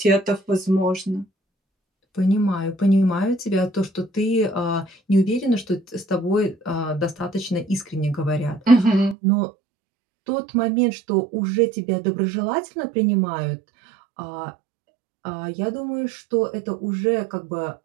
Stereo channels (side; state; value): left; drops out; at 9.2 s